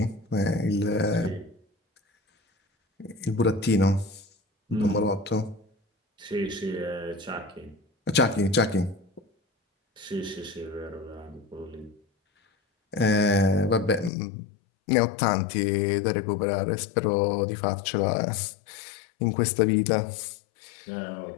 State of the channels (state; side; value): drops out; right; at 14.1 s